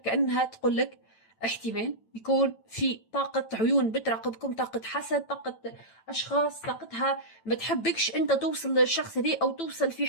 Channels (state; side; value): late; right; 9.0 ms